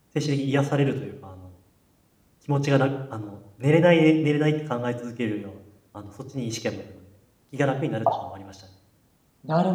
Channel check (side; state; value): both; identical; correlation 1.00